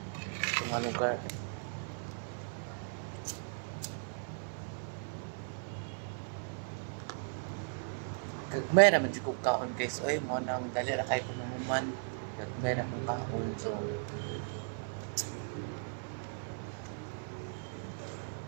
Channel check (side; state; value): left; silent; 53 dB below the other